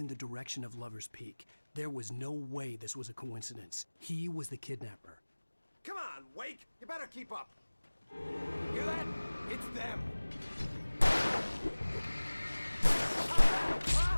the direction of Lover's Peak. There was no way this was a coincidence. He was the kidnapper. Come on, Wake! You better keep up. Hear that? It's them.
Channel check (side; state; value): both; inverted; correlation -1.00